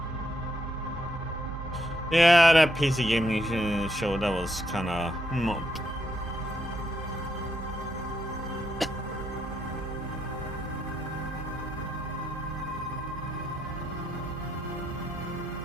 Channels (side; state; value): both; normal; correlation 0.78